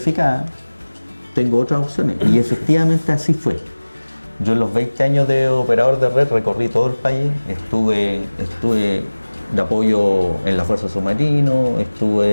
tengo otras opciones. Y efectivamente así fue. Yo en los 20 años de operador de red recorrí todo el país, estuve de apoyo en la Fuerza Submarino,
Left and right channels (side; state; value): both; inverted; correlation -1.00